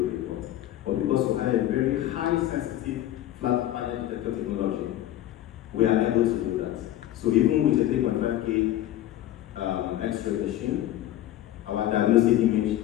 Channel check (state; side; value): quieter; right; 13.4 dB